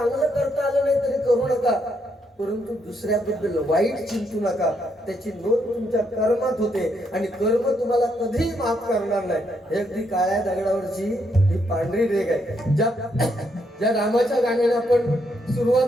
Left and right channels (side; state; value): both; normal; correlation 0.76